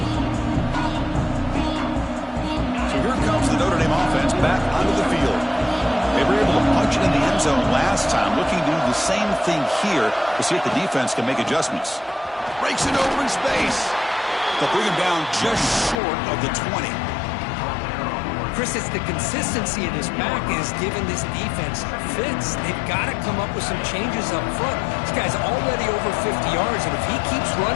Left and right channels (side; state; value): right; drops out; at 16.0 s